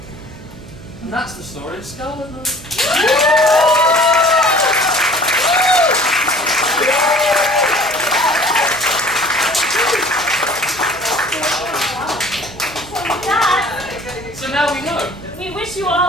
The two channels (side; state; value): right; noise; hum, 19 dB below the sound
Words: And that's the story of Scarlet Night. So now we know. We wish you